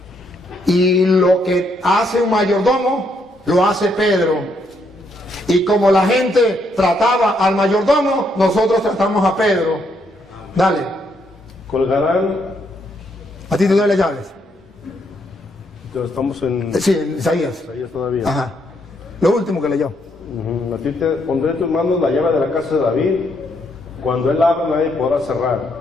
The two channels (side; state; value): both; normal; correlation 0.74